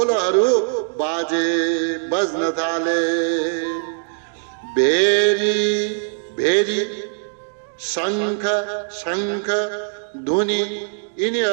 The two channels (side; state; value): left; silent; digital silence